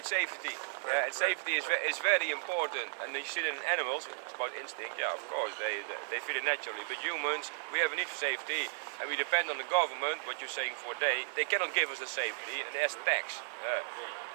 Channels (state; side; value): silent; left; 55 dB below the other